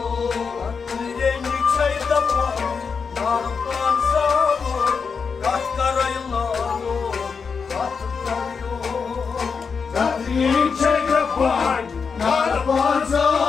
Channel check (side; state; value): right; quieter; 5.6 dB